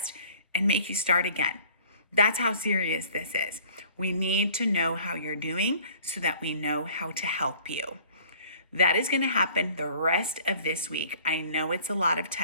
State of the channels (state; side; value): inverted; both; correlation -0.52